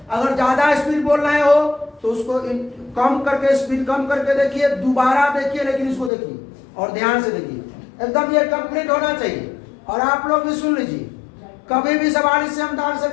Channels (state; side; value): drops out; right; at 6.1 s